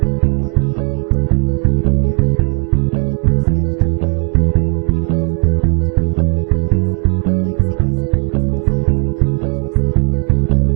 Our name means more because we go the extra mile. From the first sketch to the final walkthrough, we don't just build homes, we help build your legacy. Legacy Custom Homes and Designs, local, trusted, and here for the long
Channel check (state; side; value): quieter; left; 38.7 dB